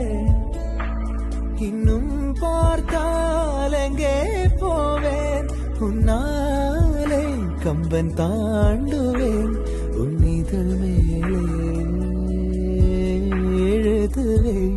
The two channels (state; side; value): identical; both; correlation 1.00